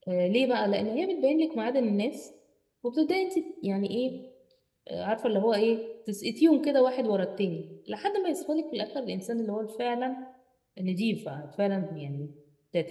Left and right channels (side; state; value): both; identical; correlation 1.00